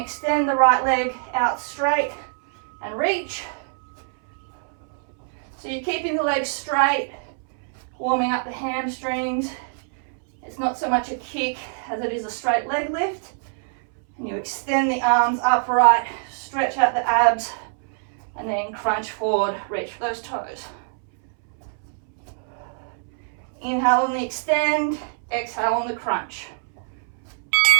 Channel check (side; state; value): left; silent; 62 dB below the other